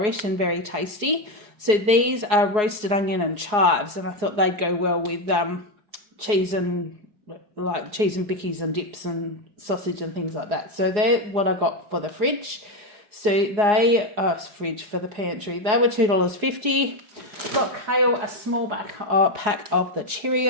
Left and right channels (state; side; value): late; left; 4.8 ms